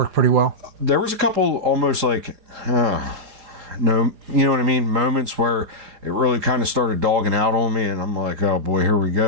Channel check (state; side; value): late; left; 4.9 ms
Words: pretty well. There was a couple almost like, no, you know what I mean? Moments where it really kind of started dogging out on me, and I'm like, oh boy, here we